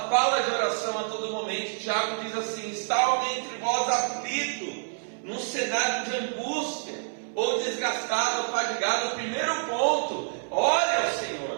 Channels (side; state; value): left; silent; 60 dB below the other